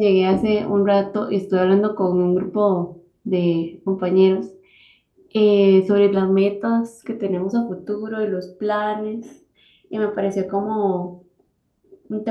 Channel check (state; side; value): identical; both; correlation 1.00